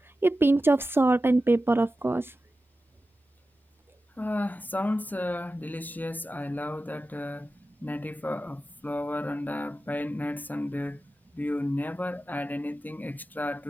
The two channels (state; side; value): normal; both; correlation 0.93